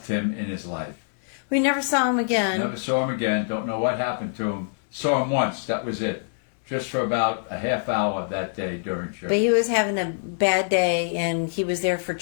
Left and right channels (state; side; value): silent; right; digital silence